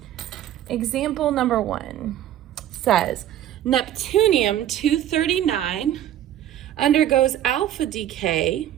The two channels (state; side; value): quieter; left; 11.7 dB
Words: Example number 1 says, Neptunium-239 undergoes alpha decay